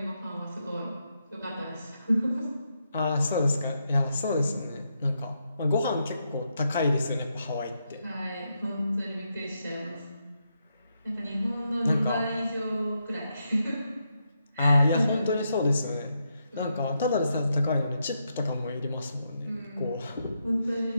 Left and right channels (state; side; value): inverted; both; correlation -0.82